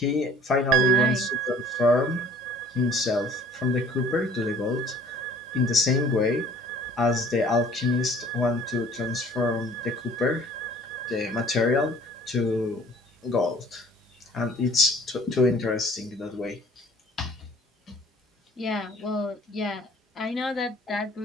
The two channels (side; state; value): both; normal; correlation 0.53